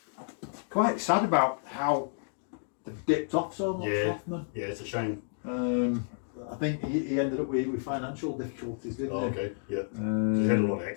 quite sad about how they've dipped off so much, Hoffman. Yeah, it's a shame. I think he ended up with financial difficulties, didn't he? Okay, yeah. He's had a lot of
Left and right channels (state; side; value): silent; right; digital silence